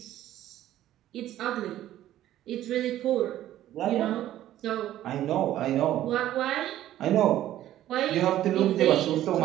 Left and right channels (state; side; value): quieter; left; 13.1 dB